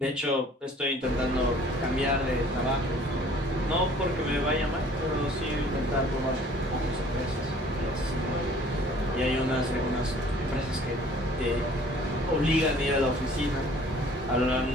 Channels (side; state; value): both; normal; correlation 0.53